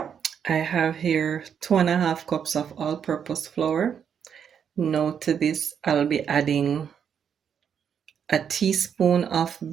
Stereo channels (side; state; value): left; quieter; 7.8 dB